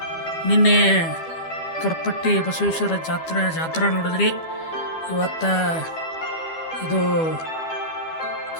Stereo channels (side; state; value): right; late; 12 ms